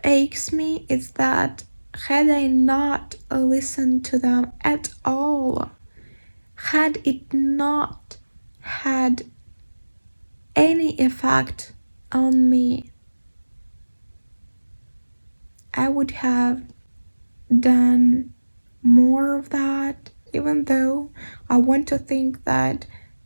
aches me is that had I not listened to them at all, had it not had any effect on me, I would have done more of that. Even though I want to think that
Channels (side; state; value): both; inverted; correlation -1.00